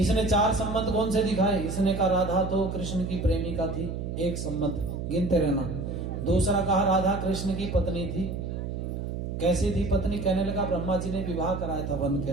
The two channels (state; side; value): noise; right; hum, 5 dB below the sound